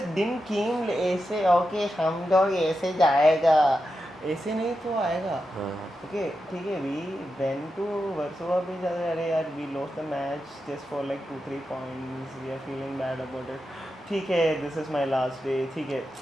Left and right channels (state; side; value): normal; both; correlation 0.89